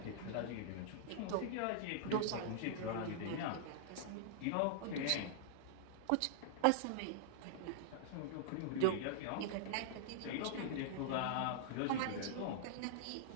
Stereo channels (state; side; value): different; both; correlation -0.01